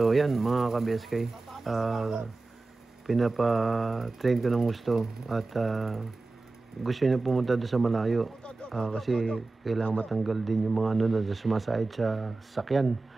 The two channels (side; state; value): left; quieter; 3.4 dB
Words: yan, mga ka-BSK, pinapa-train ko ng gusto at gusto niya pumunta doon sa malayo. Kasi kailangan matanggal din yung mga na sumasahid sa sakyan.